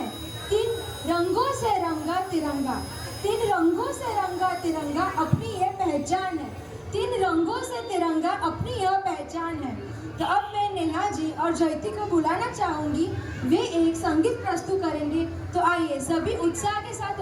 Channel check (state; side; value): identical; both; correlation 1.00